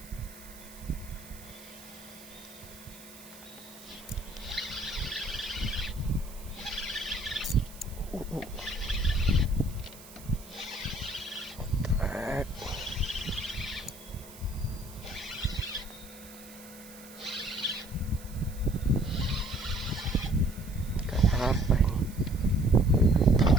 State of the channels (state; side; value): noise; right; hiss, 18 dB below the sound